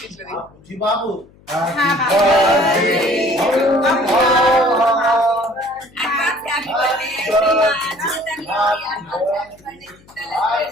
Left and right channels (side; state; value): left; noise; hum, 28 dB below the sound